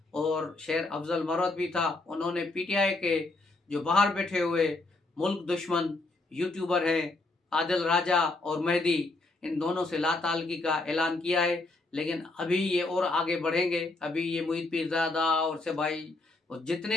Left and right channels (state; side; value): quieter; right; 3.1 dB